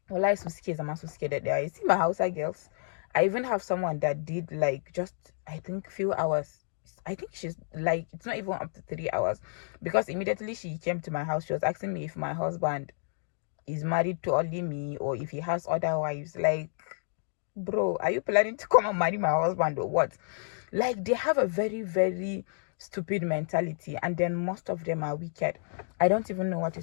Well, I'm so scared that they are. You see my Hausa girls. I even have someone that did like just, I think, few hours. I think she's like, it's not even up to 3 hours, because immediately she came to my house, she was asking me if my husband is married to only me or if he has other wives. Like, bro, are you planning to come and marry my husband or what? Like, they have a very stupid mentality, and then most of them are wicked. I don't even know what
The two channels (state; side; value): silent; right; digital silence